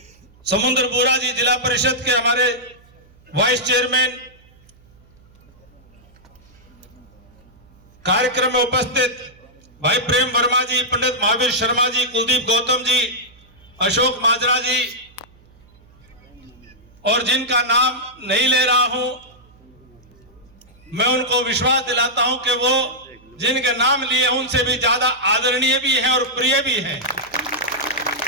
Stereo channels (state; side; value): noise; right; hum, 28 dB below the sound